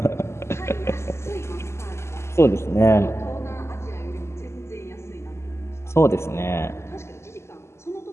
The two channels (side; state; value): right; late; 0.13 ms